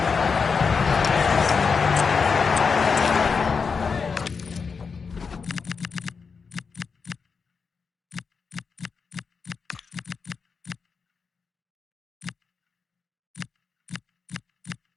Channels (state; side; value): quieter; right; 5.4 dB